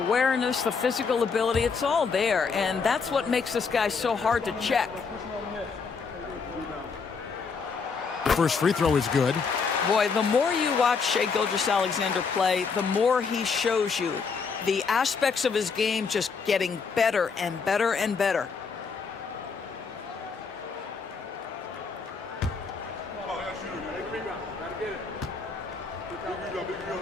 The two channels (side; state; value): right; quieter; 5.3 dB